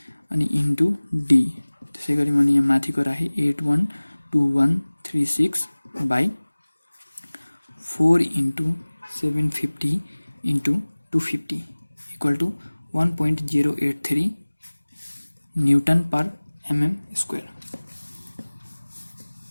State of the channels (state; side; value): inverted; both; correlation -1.00